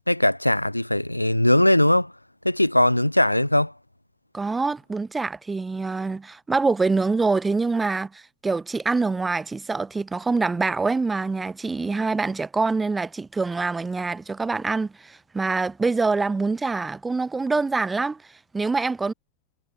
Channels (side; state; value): both; normal; correlation 0.09